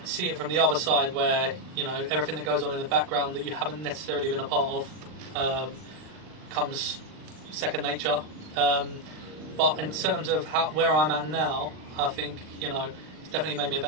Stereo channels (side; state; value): left; late; 39 ms